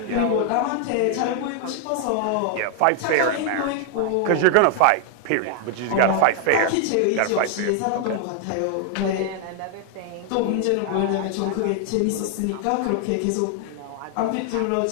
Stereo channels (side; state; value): both; different; correlation 0.00